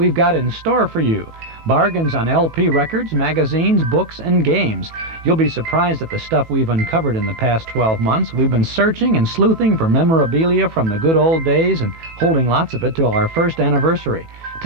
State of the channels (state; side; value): late; left; 19 ms